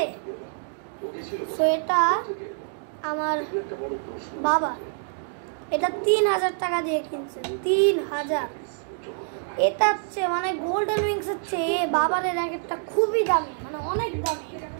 সো এটা আমার বাবা, এটা 3000 টাকা দিয়ে কিনছে, 3000। এটা হচ্ছে মানে গোল্ডেন উইংস হচ্ছে বাবার র্যাকেটটা খুবই দামি, মানে অনেক দামি,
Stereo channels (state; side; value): silent; left; digital silence